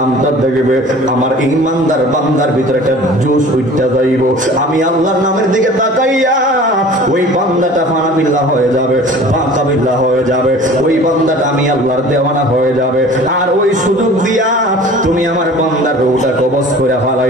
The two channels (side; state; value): both; normal; correlation 0.44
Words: দেখবে আমার ঈমানদার বান্দার ভিতরে একটা জোশ উঠতে যাইব আমি আল্লাহর নামের দিকে তাকাইয়া ওই বান্দাটা ফানাবিল্লাহ হয়ে যাবে বাকাবিল্লাহ হয়ে যাবে ওই বান্দাটা আমি আল্লাহর দেওয়ানা হয়ে যাবে আর ওই সুযোগ দিয়া তুমি আমার বান্দার রূহটা কবজ করে